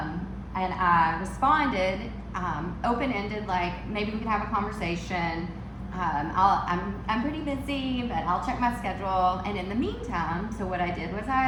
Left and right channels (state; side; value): identical; both; correlation 1.00